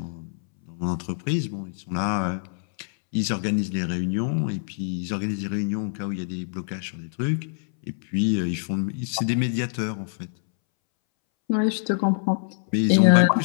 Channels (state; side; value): silent; right; 62 dB below the other